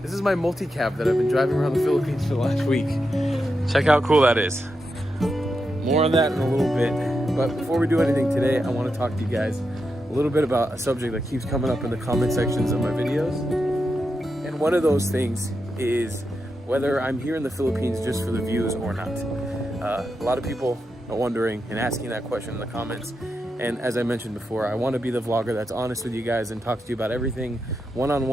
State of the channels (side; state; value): both; normal; correlation 0.86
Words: This is my multicab that I've been driving around the Philippines for the last week. Check how cool that is. More on that in a little bit. But before we do anything today, I want to talk to you guys a little bit about a subject that keeps coming up in the comment sections of my videos. And one of those things is whether I'm here in the Philippines just for the views or not. A lot of people are wondering and asking that question in the comments. And as I mentioned before, I want to be the vlogger that's honest with you guys and talks to you about everything